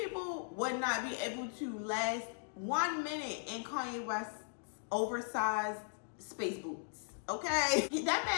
would not be able to last 1 minute in Kanye West's oversized space boots. Okay? That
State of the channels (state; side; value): silent; right; digital silence